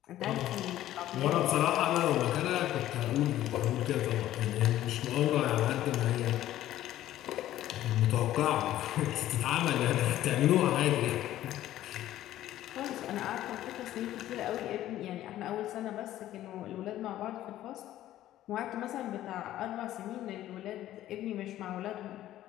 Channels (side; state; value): right; quieter; 13.6 dB